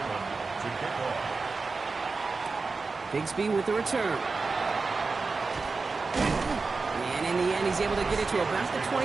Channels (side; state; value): left; quieter; 4.1 dB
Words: Bigsby with the return. And in the end, he's able to get it to about the